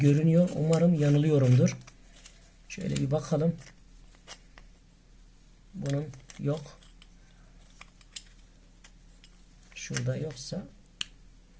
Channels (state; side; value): identical; both; correlation 1.00